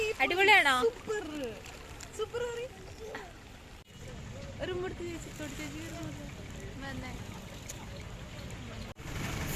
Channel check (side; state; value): both; identical; correlation 1.00